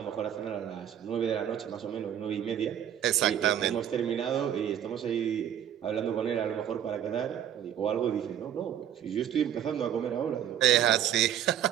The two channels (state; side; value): quieter; left; 10.0 dB